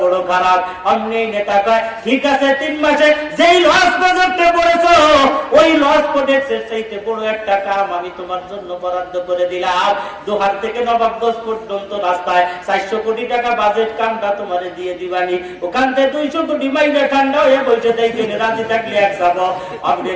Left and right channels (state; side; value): identical; both; correlation 1.00